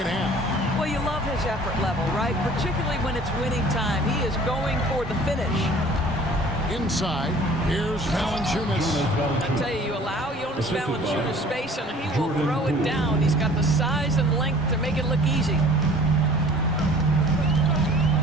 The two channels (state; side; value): normal; both; correlation 0.49